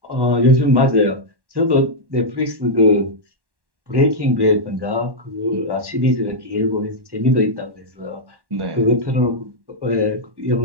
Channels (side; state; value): left; late; 1.1 ms